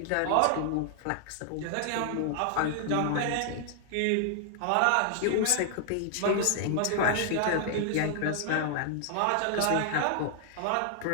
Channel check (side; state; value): both; different; correlation 0.00